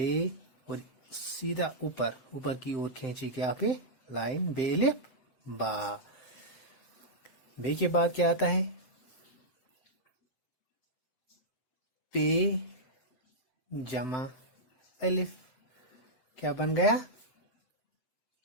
اور سیدھا اوپر کی اور کھینچی کے آپ لائن بے الف با۔ بے کے بعد کیا آتا ہے؟ پے جمع الف، کیا بن گیا؟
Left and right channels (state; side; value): late; right; 7.7 ms